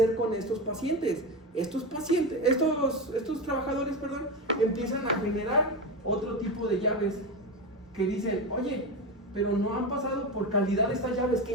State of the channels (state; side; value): normal; both; correlation 0.19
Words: con estos pacientes? Estos trabajadores, empiezan a generar otro tipo de llaves que dicen, oye, pero no han pasado por calidad estas llaves, ¿qué